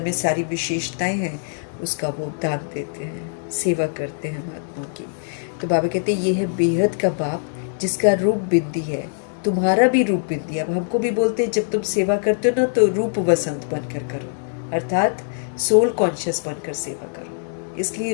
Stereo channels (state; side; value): silent; right; digital silence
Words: में सारी विशेषताएं हैं उसका वो दान देते हैं, सेवा करते हैं महात्मा की। तो बाबा कहते हैं ये है बेहद का बाप जिसका रूप बिंदी है। तुम्हारा भी रूप बिंदी है। अब हमको भी बोलते हैं जब तुम सेवा करते हो ना तो रूप वसंत बनकर करो, अर्थात सोल कॉन्शियस बनकर सेवा करो, इसलिए